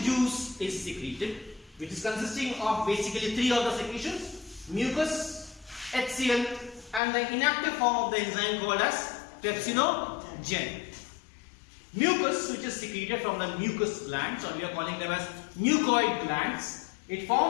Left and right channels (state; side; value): drops out; right; at 7.0 s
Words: juice is secreted, which is consisting of basically three of the secretions: mucus, HCl, and the inactive form of the enzyme called as pepsinogen. Mucus, which is secreted from the mucus glands, or we are calling them as mucoid glands, it